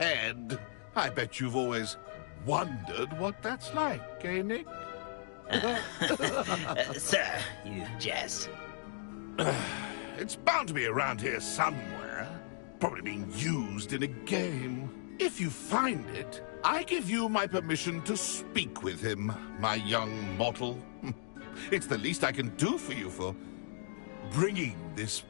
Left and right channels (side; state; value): right; silent; digital silence